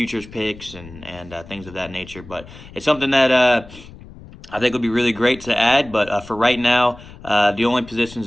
picks and things of that nature. But it's something that I think would be really great to add, but for right now, the only positions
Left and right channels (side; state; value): left; noise; rumble, 18 dB below the sound